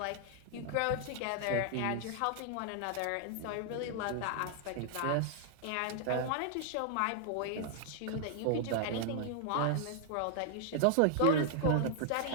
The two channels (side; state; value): both; different; correlation 0.00